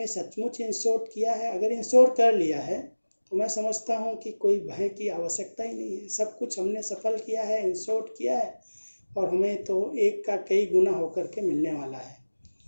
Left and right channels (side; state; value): both; inverted; correlation -1.00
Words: सचमुच इंश्योर किया है। अगर इंश्योर कर लिया है तो मैं समझता हूँ कि कोई भय की आवश्यकता ही नहीं है, सब कुछ हमने सफल किया है, इंश्योर किया है, और हमें तो एक का कई गुना होकर के मिलने वाला है।